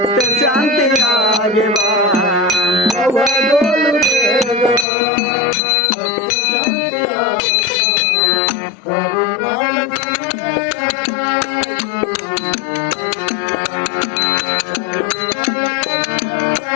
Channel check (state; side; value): drops out; right; at 4.9 s